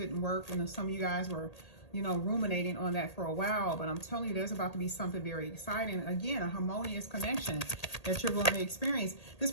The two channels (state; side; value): late; right; 1.8 ms